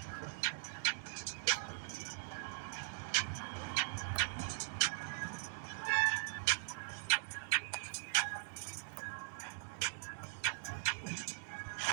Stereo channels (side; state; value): left; silent; digital silence